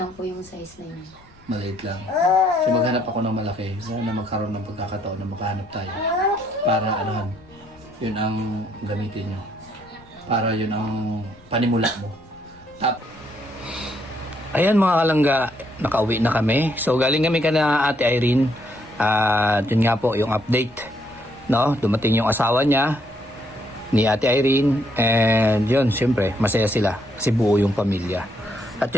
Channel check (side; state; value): left; noise; rumble, 28 dB below the sound